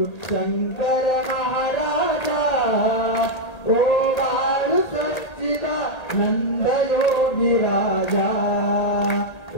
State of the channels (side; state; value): right; late; 1.8 ms